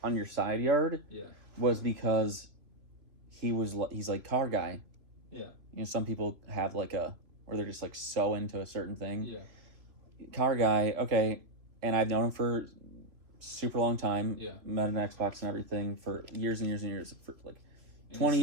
on your side yard, was because he's like car guy. Yeah. You know, some people have like where they're just like so into a certain thing. Yeah. Car guy, okay, and I've known him for super long time. Yeah. Met an Xbox and everything for years and years and years, for like 20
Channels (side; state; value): left; late; 3.0 ms